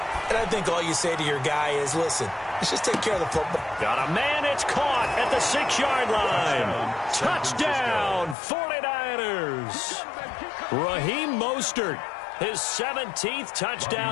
And I think all you say to your guy is, listen, let's just take care of the football. Got a man, it's caught at the 6-yard line. Touchdown, 49ers. Raheem Mostert, his 17th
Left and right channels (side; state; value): right; drops out; at 8.3 s